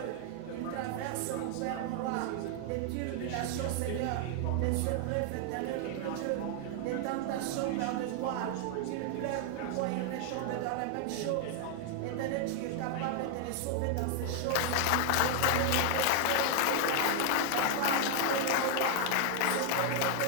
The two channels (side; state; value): both; different; correlation 0.00